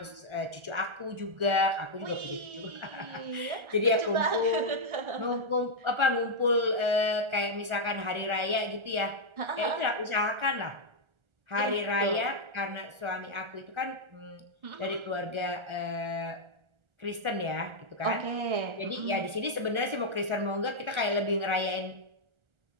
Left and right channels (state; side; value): late; left; 1.4 ms